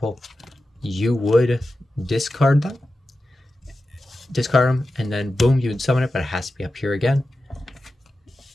You would discard them, and then boom, you would summon it, but it has to be up here again.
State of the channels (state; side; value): normal; both; correlation 0.92